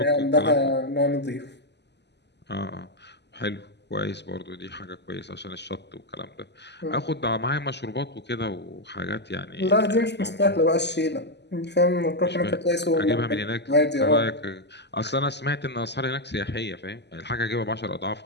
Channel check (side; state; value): right; late; 0.50 ms